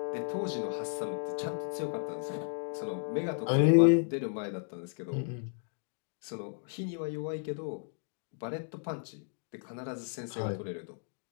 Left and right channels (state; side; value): silent; right; digital silence